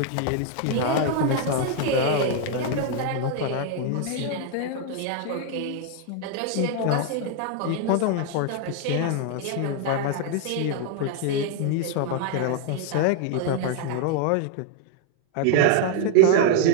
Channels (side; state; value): both; different; correlation 0.00